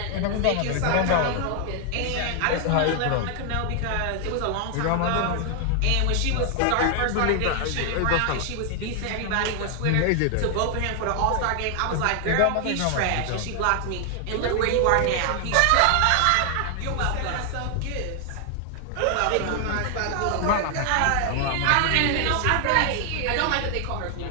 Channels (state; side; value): different; both; correlation 0.00